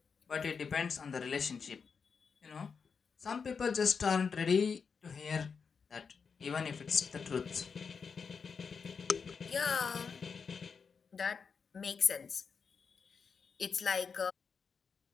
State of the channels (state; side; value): quieter; right; 5.7 dB